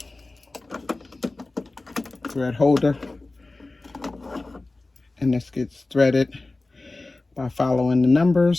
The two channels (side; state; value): right; quieter; 3.2 dB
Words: thread holder, and this gets threaded by following the